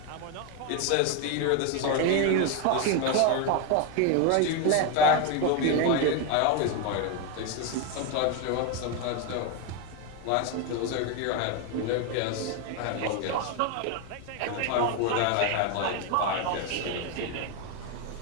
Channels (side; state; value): both; different; correlation 0.02